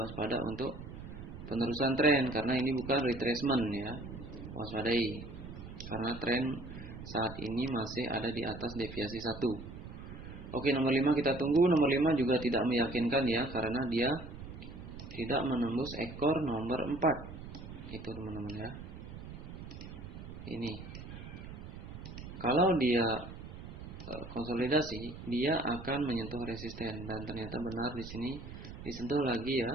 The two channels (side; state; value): right; noise; rumble, 12 dB below the sound